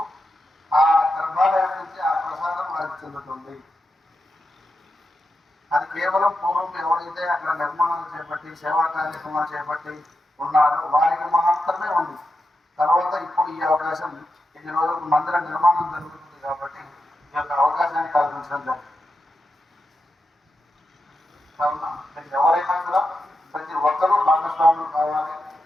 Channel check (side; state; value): both; normal; correlation 0.88